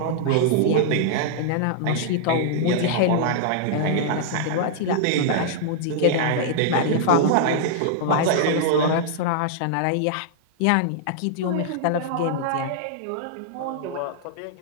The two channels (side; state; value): both; different; correlation -0.01